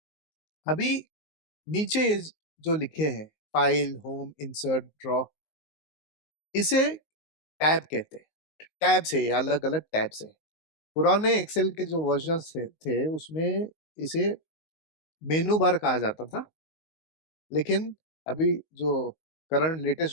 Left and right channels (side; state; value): right; late; 19 ms